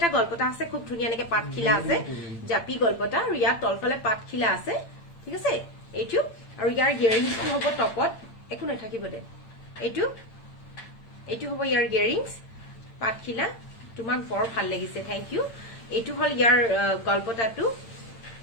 গল্পটা আছে খুব ধুনিয়া এনেকে পাতখিলা আছে জাপি গল্পটা আৰু ইয়াত তলফালে পাতখিলা আছে ঠিক আছে এইটো আৰু ইয়াৰ ইয়াৰিংছটো হ'ব টপত একো নাথাকিব দে এইটো হ'ব ইয়াৰ ইয়াৰিংছ পাতখিলা তোমাক বৰ ভাল লাগিছে থ্যাংক ইউ এইটো হল ইয়াৰ গল্পটাটো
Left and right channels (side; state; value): right; late; 8.8 ms